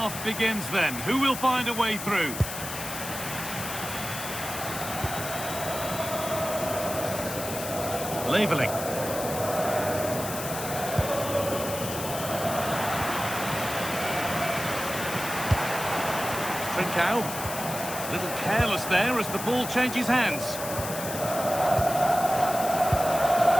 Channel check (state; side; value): noise; left; hiss, 7 dB below the sound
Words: begins then. Who will find a way through? Leveling. Trincao. A little careless there as the ball changes hands.